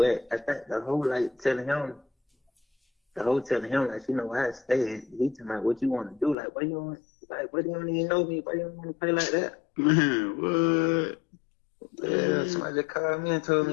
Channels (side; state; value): right; drops out; at 6.4 s